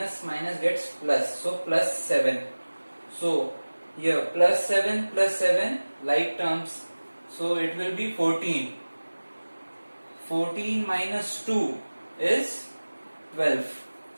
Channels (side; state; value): both; inverted; correlation -1.00